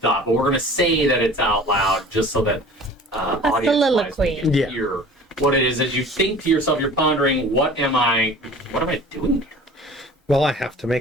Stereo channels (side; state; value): both; normal; correlation 0.44